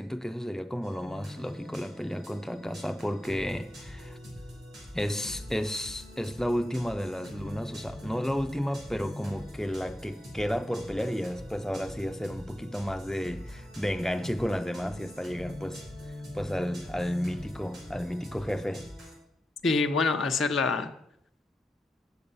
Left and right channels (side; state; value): both; normal; correlation 0.88